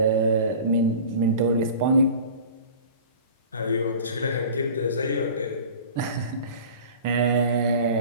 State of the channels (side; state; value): both; inverted; correlation -0.40